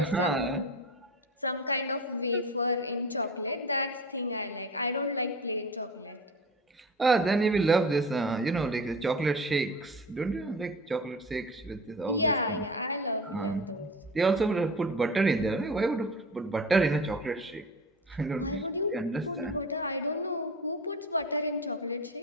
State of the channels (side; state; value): both; normal; correlation 0.34